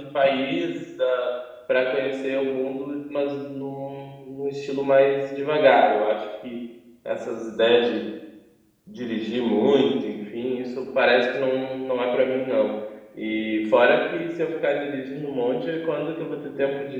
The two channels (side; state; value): both; identical; correlation 1.00